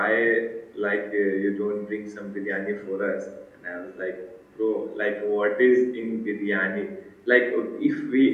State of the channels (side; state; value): both; identical; correlation 1.00